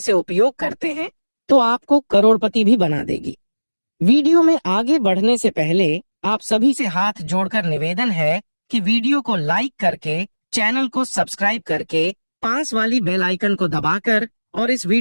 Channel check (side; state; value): both; inverted; correlation -1.00